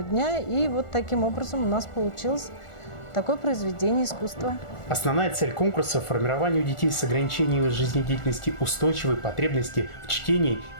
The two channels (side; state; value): right; late; 1.4 ms